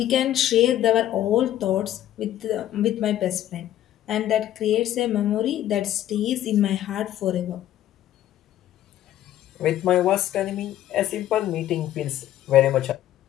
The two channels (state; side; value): quieter; right; 12.6 dB